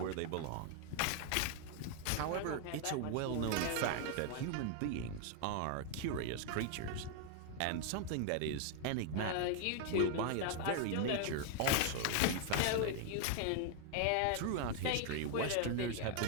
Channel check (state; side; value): different; both; correlation 0.00